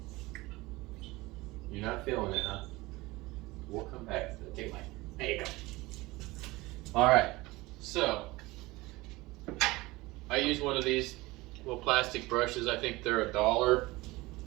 You're not feeling it, huh? We'll come back to it. Take a bite. There you go. Alright, so I use one of these little plastic brushes. I think they're $1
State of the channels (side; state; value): left; quieter; 21.0 dB